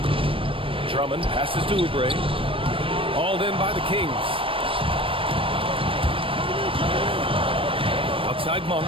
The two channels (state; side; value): late; left; 0.26 ms